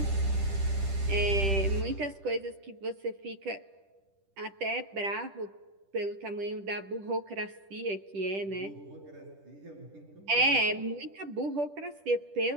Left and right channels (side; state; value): left; late; 10 ms